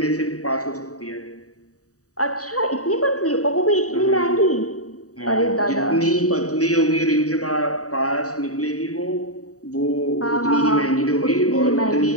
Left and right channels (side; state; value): right; late; 0.66 ms